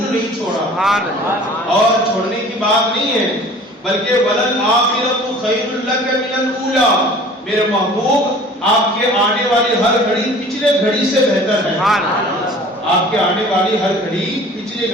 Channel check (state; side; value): normal; both; correlation 0.46